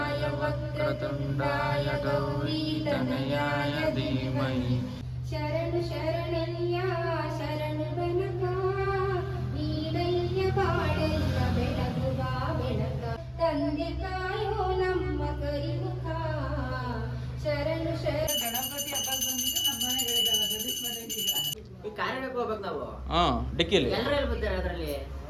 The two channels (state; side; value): identical; both; correlation 1.00